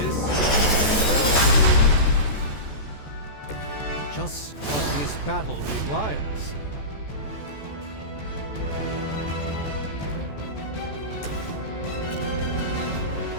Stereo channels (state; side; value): late; right; 14 ms